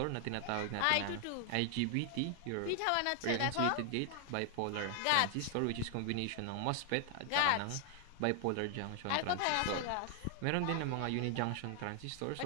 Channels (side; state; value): both; different; correlation 0.00